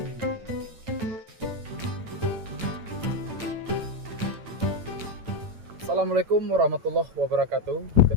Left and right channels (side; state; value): left; late; 9.0 ms